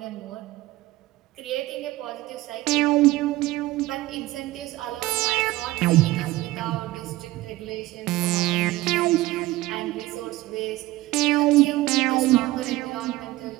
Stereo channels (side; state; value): left; quieter; 18.0 dB